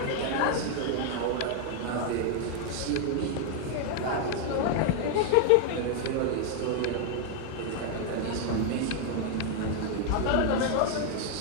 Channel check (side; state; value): both; different; correlation 0.00